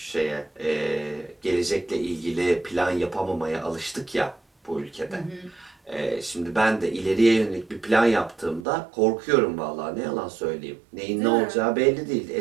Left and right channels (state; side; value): drops out; left; at 8.7 s